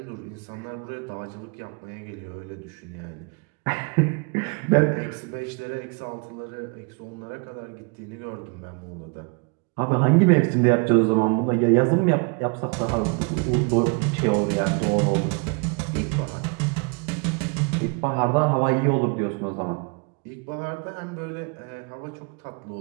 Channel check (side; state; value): left; quieter; 33.5 dB